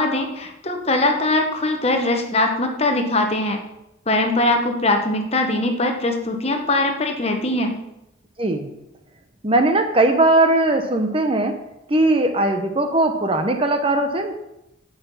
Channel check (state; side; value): normal; both; correlation 0.16